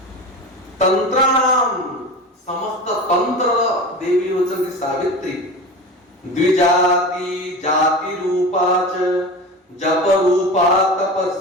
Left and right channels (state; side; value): normal; both; correlation 0.30